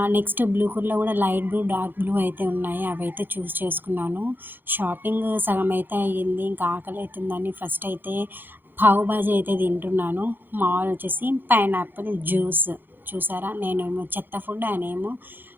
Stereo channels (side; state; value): left; late; 0.096 ms